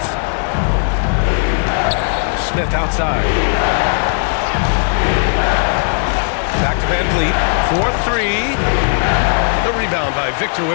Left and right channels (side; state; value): right; silent; 69 dB below the other